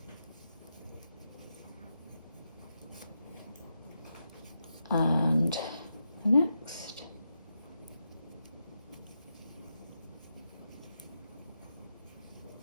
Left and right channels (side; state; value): both; inverted; correlation -0.86